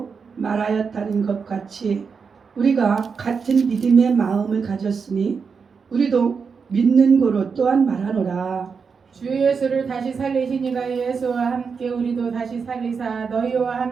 말하였다는 것 같이 우리가 같은 믿음의 마음을 가졌으니 우리도 믿는 고로 또한 말하노라. 주 예수를 다시 살리신 이가 예수와 함께 우리도 다시 살리사 너희와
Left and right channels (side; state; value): left; quieter; 5.6 dB